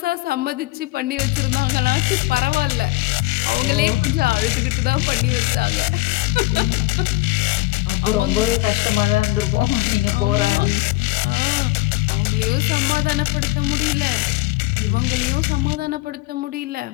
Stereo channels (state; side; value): quieter; right; 20.4 dB